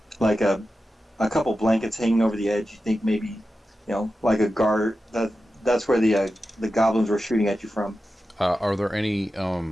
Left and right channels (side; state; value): both; normal; correlation 0.92